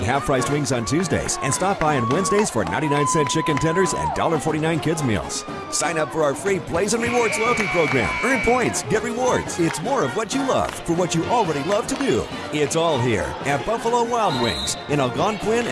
half-priced wings on Tuesdays. And stop by on Wednesdays for 99-cent chicken tenders and $1.49 kids meals. Sign up for our free Plays and Rewards loyalty program. Earn points, get rewards. It's more of what you love for what you already love to do. It's all here at Buffalo Wild Wings in Algonquin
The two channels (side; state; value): both; identical; correlation 1.00